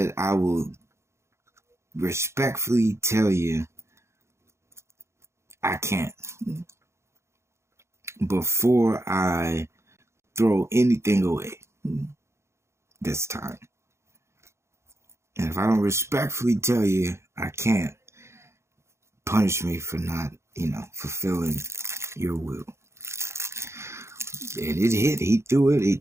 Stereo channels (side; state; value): left; late; 0.13 ms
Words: I will respectfully tell you I can't before I throw anything away this time. And if I don't respectfully tell you I can't, punish me for not, fulfilling your will. And it hit. He threw